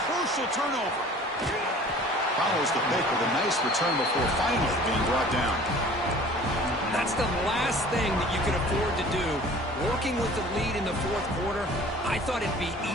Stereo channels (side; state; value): both; normal; correlation 0.47